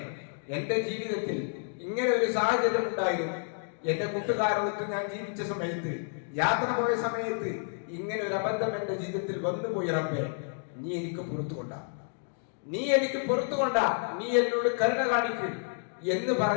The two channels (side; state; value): right; silent; 58 dB below the other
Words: എന്റെ ജീവിതത്തിൽ ഇങ്ങനെ ഒരു സാഹചര്യം ഉണ്ടായിരുന്നു, എന്റെ കൂട്ടുകാരോടൊത്ത് ഞാൻ ജീവിച്ച സമയത്ത്, യാത്ര പോയ സമയത്ത് ഇങ്ങനെ ഒരു അബദ്ധം എന്റെ ജീവിതത്തിൽ വന്നുപോയി റബ്ബേ, നീ എനിക്ക് പുറത്തു കൊണ്ടാ, നീ എനിക്ക് പുറത്തു കൊണ്ടാ, നീ എന്നോട് കരുണ കാണിക്കും എന്ന്